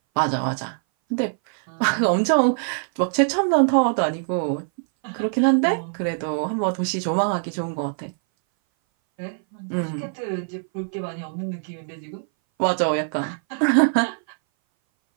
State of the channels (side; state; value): left; silent; 59 dB below the other